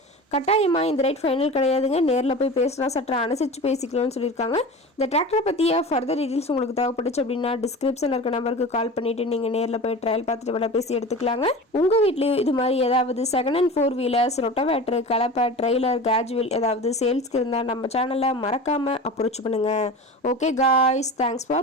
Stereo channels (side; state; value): both; normal; correlation 0.33